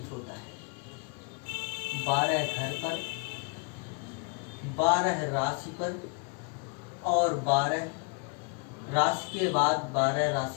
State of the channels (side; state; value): right; quieter; 34.7 dB